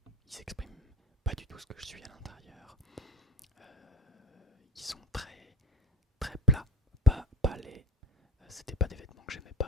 Ils s'expriment pas du tout ce que je suis à l'intérieur. Ils sont très très plats, pas laids. C'était pas des vêtements que j'aimais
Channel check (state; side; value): normal; both; correlation 0.30